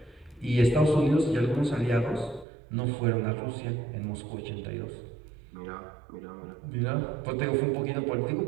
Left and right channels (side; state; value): left; drops out; at 2.5 s